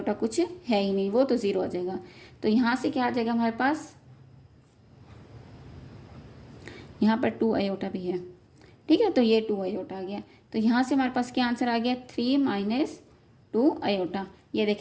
कुछ है ही नहीं, वो तो 0 आ जाएगा। तो यहाँ से क्या आ जाएगा हमारे पास, यहाँ पर 2 आयोटा भी है। ठीक है, तो ये 2 आयोटा आ गया। तो यहाँ से हमारे पास क्या आंसर आ गया, 3 - 2 आयोटा। ये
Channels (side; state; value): both; identical; correlation 1.00